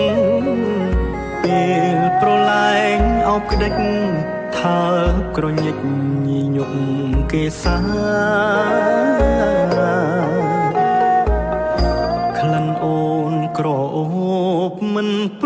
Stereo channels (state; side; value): identical; both; correlation 1.00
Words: ពេលប្រឡែងអោបក្តិចថាក្រញិចញីញប់គេសាក្លិនអូនក្រអូបមិនព